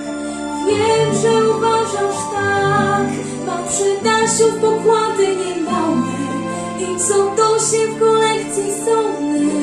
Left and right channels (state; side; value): identical; both; correlation 1.00